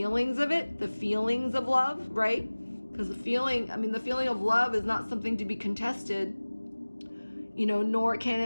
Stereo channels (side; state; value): both; inverted; correlation -1.00